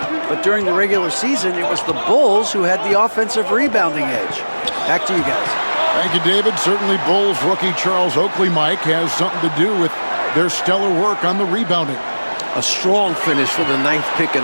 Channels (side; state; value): both; inverted; correlation -1.00